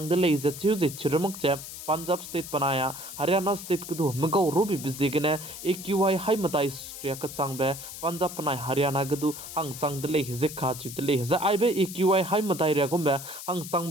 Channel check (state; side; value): noise; left; hiss, 11 dB below the sound